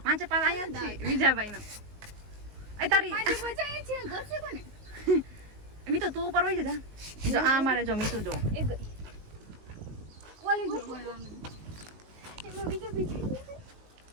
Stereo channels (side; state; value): left; late; 19 ms